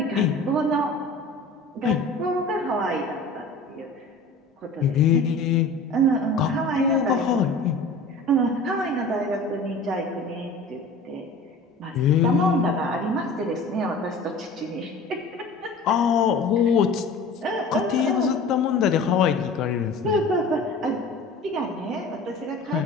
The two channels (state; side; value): quieter; right; 3.0 dB